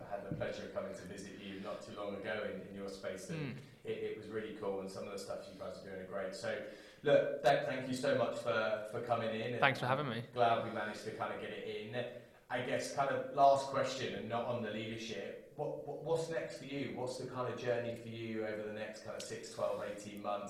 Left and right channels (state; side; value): identical; both; correlation 1.00